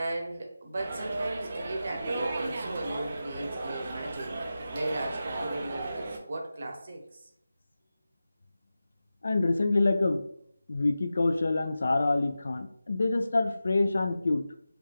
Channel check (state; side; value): inverted; both; correlation -0.94